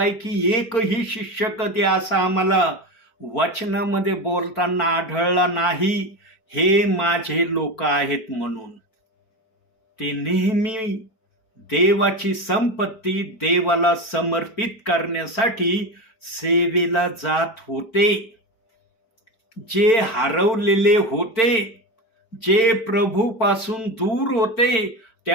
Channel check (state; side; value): late; right; 4.5 ms